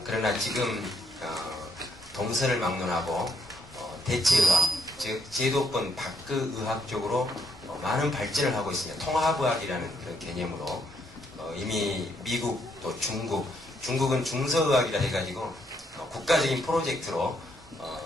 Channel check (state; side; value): normal; both; correlation 0.73